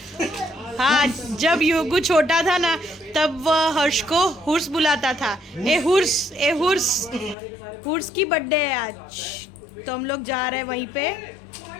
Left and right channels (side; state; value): right; drops out; at 7.4 s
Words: हाँ, जब युगु छोटा था ना तब वह हर्ष को हुर्स बुलाता था। ए हुर्स की बर्थडे है आज, तो हम लोग जा रहे हैं वहीं पे।